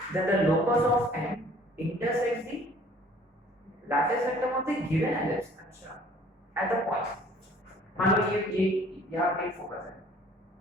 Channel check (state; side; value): normal; both; correlation 0.54